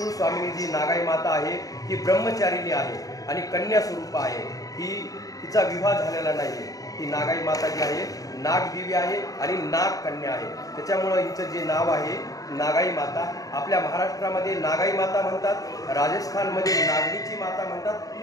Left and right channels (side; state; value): right; late; 0.17 ms